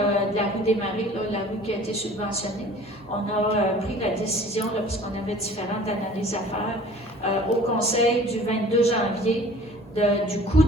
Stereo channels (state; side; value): normal; both; correlation 0.48